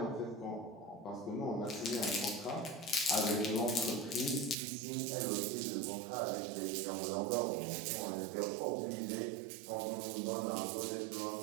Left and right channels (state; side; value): drops out; left; at 4.5 s